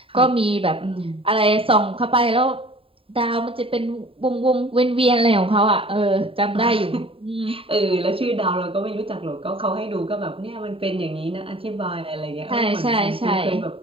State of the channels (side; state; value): left; late; 0.27 ms